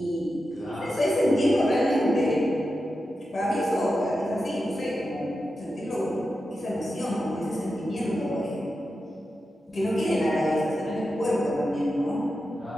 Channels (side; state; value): both; normal; correlation 0.90